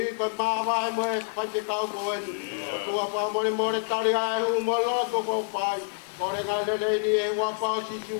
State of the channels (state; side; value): silent; right; 60 dB below the other